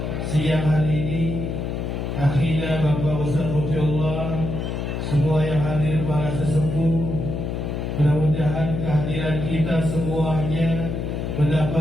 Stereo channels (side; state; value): left; noise; hum, 3 dB below the sound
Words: siang hari ini, akhirnya Bapak Ustaz Mufiullah, semua yang hadir para sesepuh, mudah-mudahan kehadiran kita semuanya